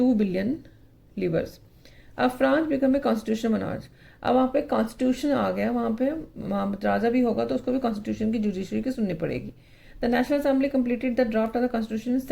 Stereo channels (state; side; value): identical; both; correlation 1.00